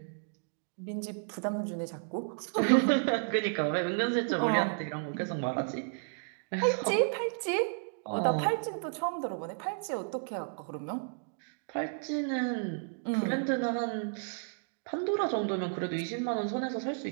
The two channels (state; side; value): silent; left; digital silence